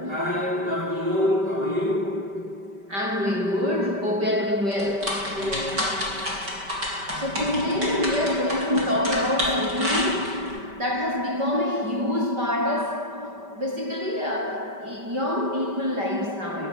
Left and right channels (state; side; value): late; left; 5.1 ms